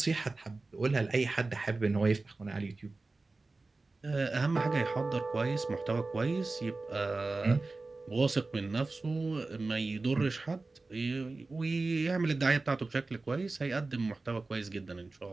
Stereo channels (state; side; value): quieter; left; 3.5 dB